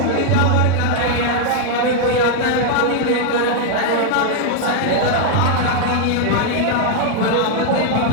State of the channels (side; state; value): both; different; correlation 0.00